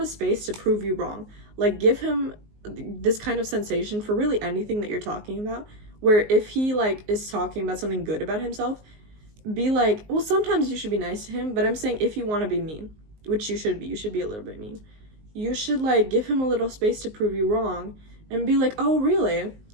space to prove you wrong. Like, give him this kind of sensation for really anything that you're talking about, where if he like is talking about something good about himself, be like, well, sometimes you should be nice to him, but I'm saying if you want to be mean, which you should be a little bit mean, you should like give him a little space to prove you wrong and be like, oh really?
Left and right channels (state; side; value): late; left; 19 ms